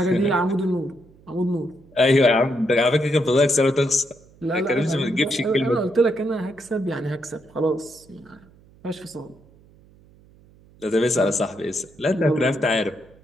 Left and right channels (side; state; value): right; noise; hum, 27 dB below the sound